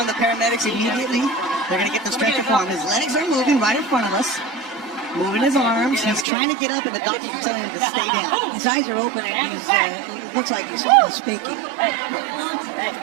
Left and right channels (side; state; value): left; drops out; at 6.2 s